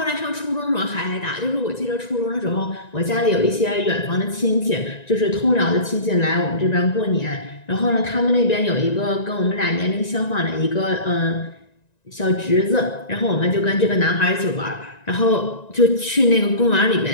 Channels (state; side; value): late; right; 1.9 ms